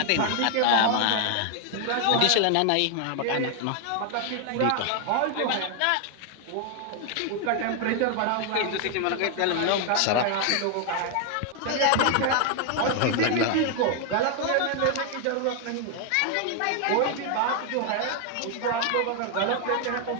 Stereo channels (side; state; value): both; different; correlation 0.00